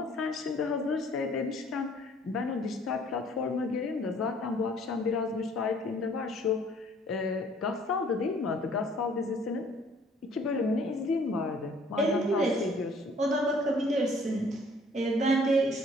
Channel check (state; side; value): normal; both; correlation 0.57